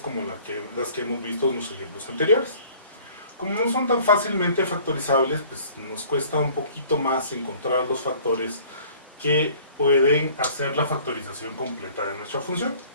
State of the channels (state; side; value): inverted; both; correlation -0.51